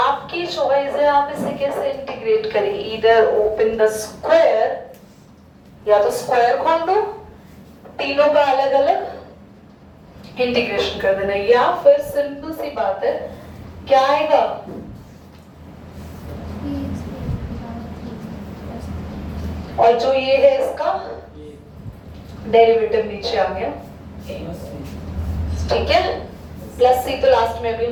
चॉइस है, आप इसे कैसे इंटीग्रेट करेंगे। इधर ओपन द स्क्वायर, या तो स्क्वायर खोल दो, तीनों का अलग अलग इंटीग्रेशन कर देना, या फिर सिंपल सी बात है, क्या आएगा, और जो ये है इसका डेरिवेटिव नीचे आ गया, ठीक है। प्लस सी तो लास्ट में भी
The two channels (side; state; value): both; identical; correlation 1.00